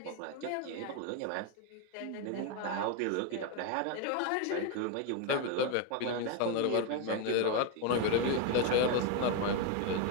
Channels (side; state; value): both; different; correlation 0.01